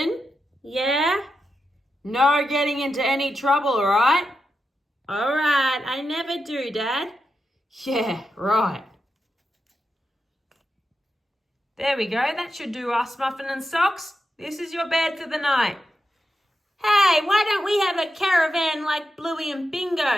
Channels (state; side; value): normal; both; correlation 0.88